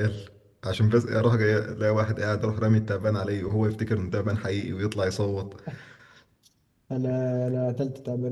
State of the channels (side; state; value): both; identical; correlation 1.00